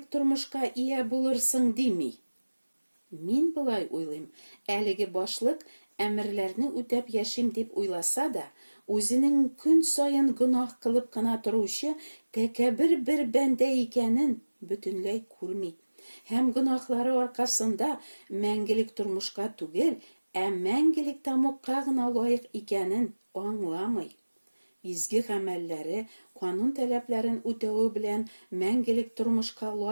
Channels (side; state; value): both; inverted; correlation -1.00